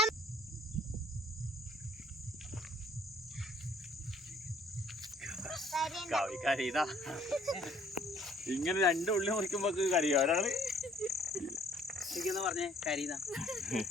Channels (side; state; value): both; normal; correlation 0.59